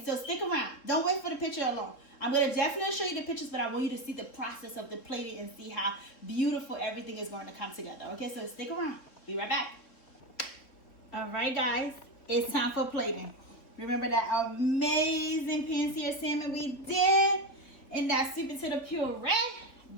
so stick around. Don't wait for the picture alone. I'm gonna definitely show you the pictures, but I want you to see the process of the plating and see how beautiful everything is going to come together. Okay, so stick around. Be right back. All right, guys, it's time for plating. Remember that amazing pan-seared salmon we did in that sweet potato puree?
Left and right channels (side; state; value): right; late; 3.5 ms